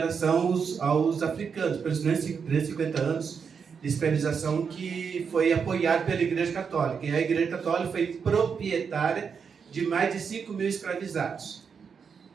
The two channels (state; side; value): quieter; left; 6.3 dB